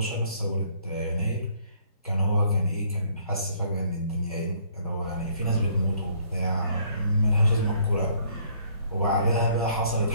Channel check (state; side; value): inverted; both; correlation -0.62